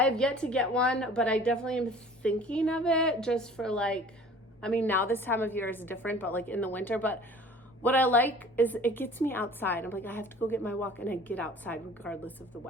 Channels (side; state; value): both; normal; correlation 0.47